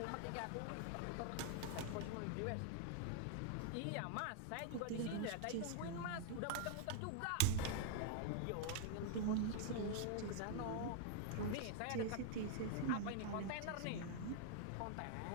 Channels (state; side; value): different; both; correlation 0.00